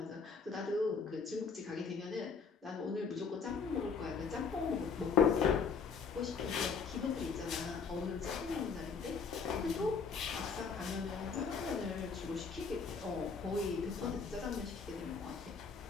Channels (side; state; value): right; quieter; 5.5 dB